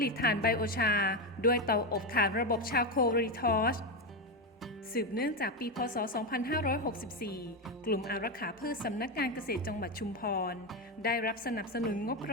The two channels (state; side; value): normal; both; correlation 0.11